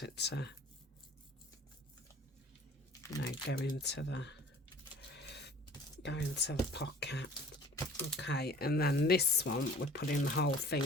it to, you know, go into the pocket. Okay, and then this one we're putting the whole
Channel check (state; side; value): normal; both; correlation 0.48